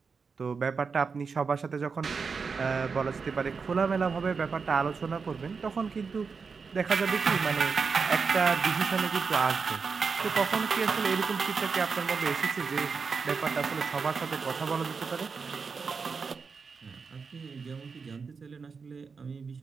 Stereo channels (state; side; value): quieter; left; 5.2 dB